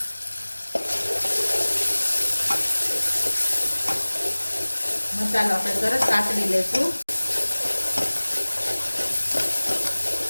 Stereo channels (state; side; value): inverted; both; correlation -1.00